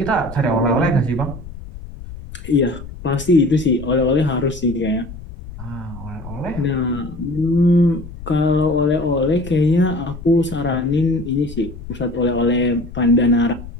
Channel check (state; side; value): noise; left; rumble, 13 dB below the sound